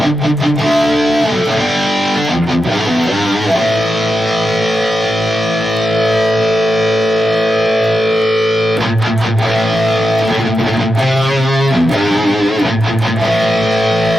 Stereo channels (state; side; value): normal; both; correlation 0.88